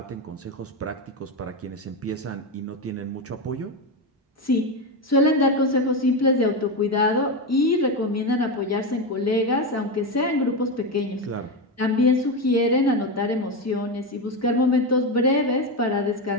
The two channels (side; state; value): both; normal; correlation 0.13